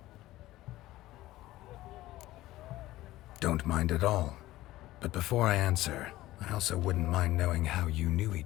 Don't mind at all. But before I answer, I also wouldn't mind knowing how you knew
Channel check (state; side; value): quieter; right; 16.4 dB